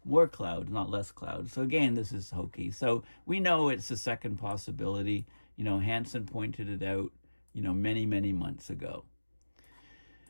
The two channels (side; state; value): both; inverted; correlation -1.00